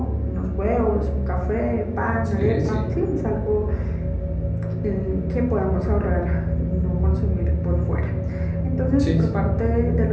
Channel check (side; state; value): both; identical; correlation 1.00